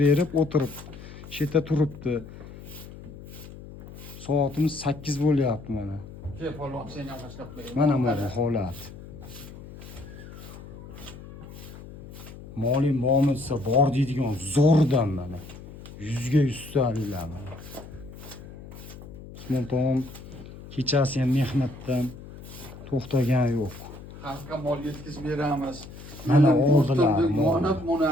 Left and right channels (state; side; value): noise; left; hum, 15 dB below the sound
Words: berib o'tirib, shu yerda turibdi. Soatimiz 8 bo'lyapti mana. Kel polvon, sen ham boshlab qo'y. Mana bu holat. Molim bormi desa bor deydigan zo'rdan mana. 100 ga 100 ta'lilar mana. Usmon tog'om kechasi ham mehnatdan to'xtagan yo'q. Xalqqa mol yetkazib beramiz. Mana oldilar mol. Mana